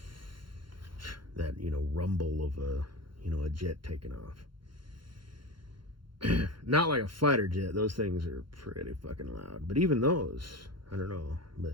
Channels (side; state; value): left; late; 0.73 ms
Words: That, rumble of a jet taking off. Not like a fighter jet. Those things are pretty fucking loud. But even those, I don't know.